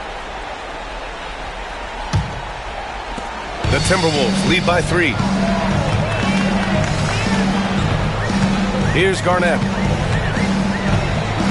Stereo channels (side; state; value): both; identical; correlation 1.00